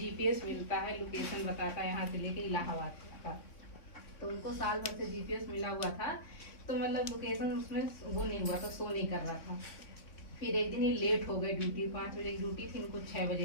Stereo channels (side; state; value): right; late; 3.6 ms